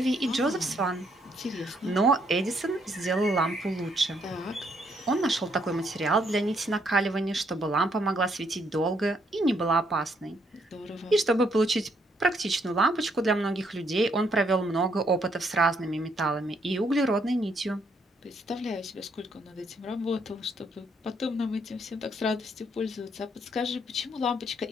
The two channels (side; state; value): both; normal; correlation 0.72